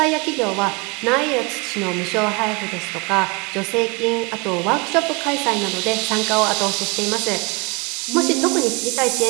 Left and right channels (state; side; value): quieter; left; 28.8 dB